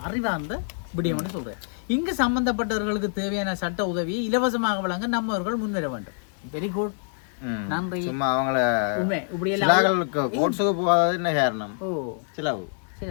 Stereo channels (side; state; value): right; silent; digital silence